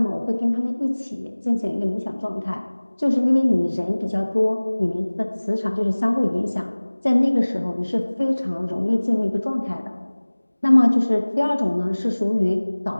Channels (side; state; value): both; inverted; correlation -1.00